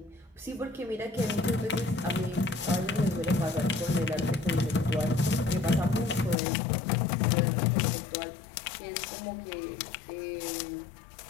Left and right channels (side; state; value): right; drops out; at 6.4 s